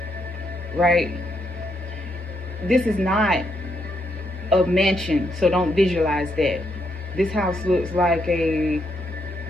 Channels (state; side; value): normal; both; correlation 0.77